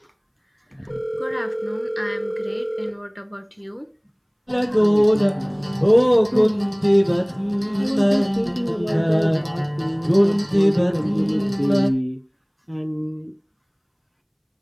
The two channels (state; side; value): identical; both; correlation 1.00